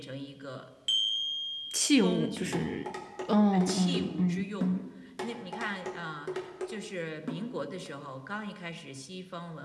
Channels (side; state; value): both; identical; correlation 1.00